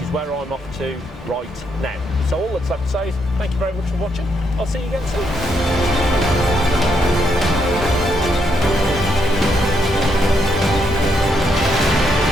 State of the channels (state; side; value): normal; both; correlation 0.77